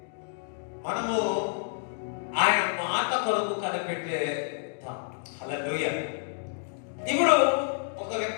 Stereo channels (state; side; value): silent; right; digital silence